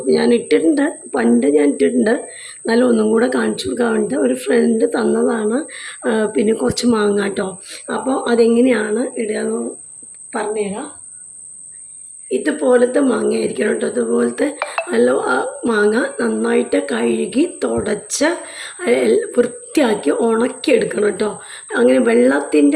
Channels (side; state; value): both; identical; correlation 1.00